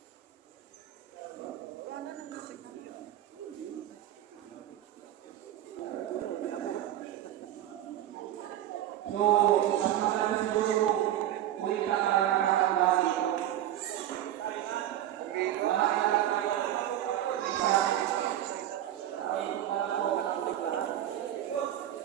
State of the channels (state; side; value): quieter; left; 12.3 dB